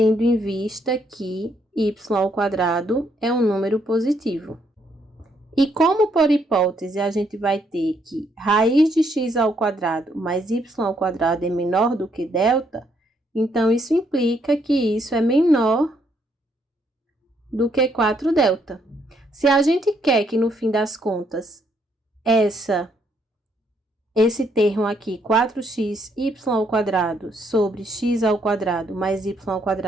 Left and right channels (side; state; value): both; normal; correlation 0.72